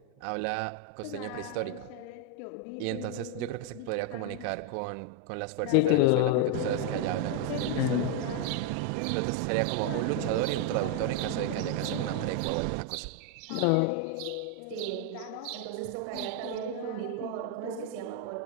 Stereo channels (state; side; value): different; both; correlation 0.01